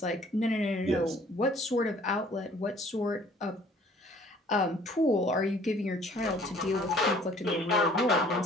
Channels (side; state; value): both; normal; correlation 0.55